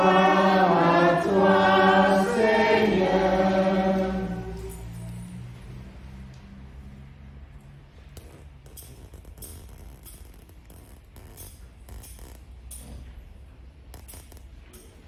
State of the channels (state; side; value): identical; both; correlation 1.00